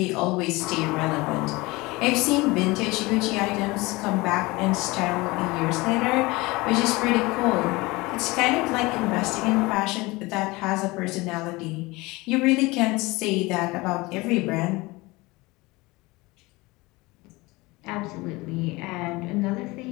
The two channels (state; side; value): quieter; right; 22.5 dB